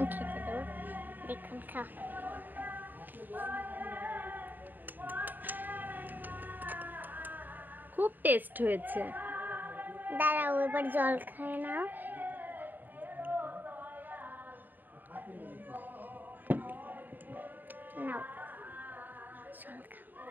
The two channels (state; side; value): late; left; 0.089 ms